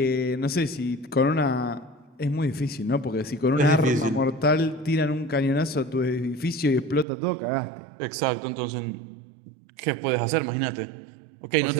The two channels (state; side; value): drops out; left; at 7.1 s